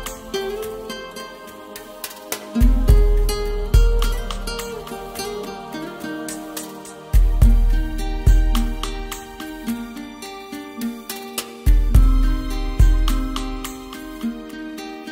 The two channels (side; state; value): both; identical; correlation 1.00